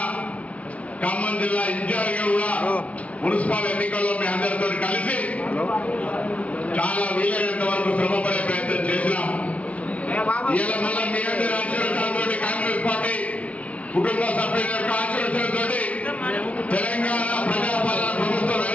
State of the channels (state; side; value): late; right; 0.066 ms